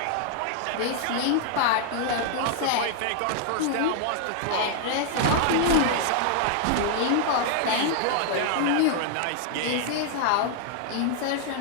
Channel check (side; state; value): both; different; correlation -0.01